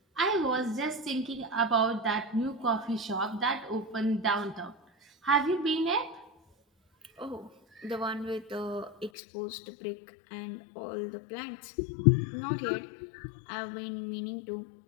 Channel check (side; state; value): right; drops out; at 9.1 s